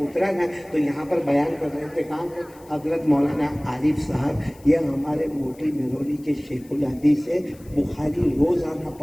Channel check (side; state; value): left; noise; hiss, 26 dB below the sound